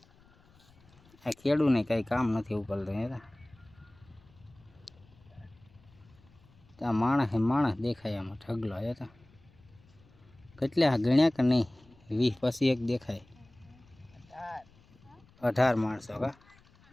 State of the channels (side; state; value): left; noise; rumble, 28 dB below the sound